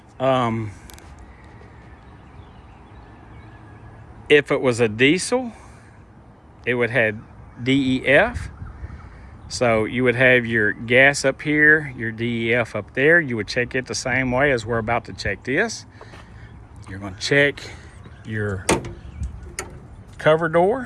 If it was a diesel, it would have DEF. So you would have your gas up here, your DEF up there. You would check it the same way as we're about to check this. You're going to check your cover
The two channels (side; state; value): both; identical; correlation 1.00